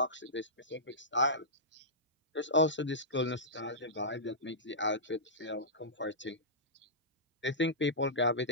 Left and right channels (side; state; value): both; normal; correlation -0.16